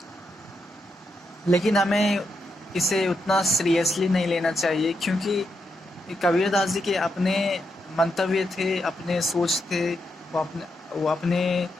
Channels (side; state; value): both; normal; correlation 0.83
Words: लेकिन हमें इसे उतना सीरियसली नहीं लेना चाहिए, क्योंकि कबीरदास जी के अपने मंतव्य थे, अपने सोच थे। वो